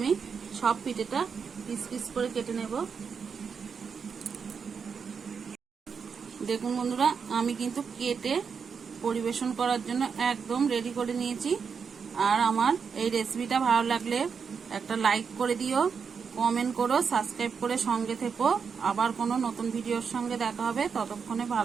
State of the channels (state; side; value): quieter; left; 6.1 dB